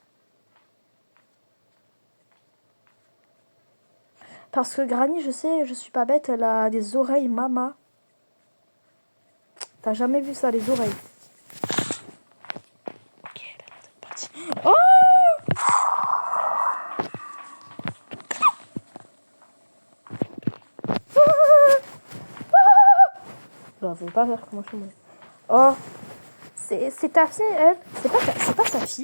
Parce que Granny, je sais, je suis pas bête, elle a des oreilles mama. T'as jamais vu ça, les oreilles? Ok, elle a l'air d'être partie. Oh! Bah, faut pas faire comment je me... Oh! C'est ta fille, elle? C'est pas sa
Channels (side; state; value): both; inverted; correlation -1.00